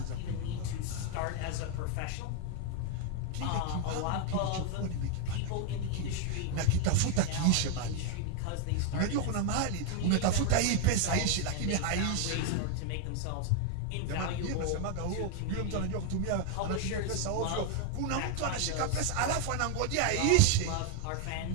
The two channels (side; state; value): both; different; correlation 0.00